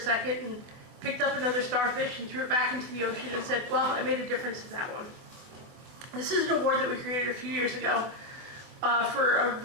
and picked up another starfish and threw it back into the ocean and said, "Well, I made a difference in that one." This is an award that we created a few years ago for a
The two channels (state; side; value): late; left; 24 ms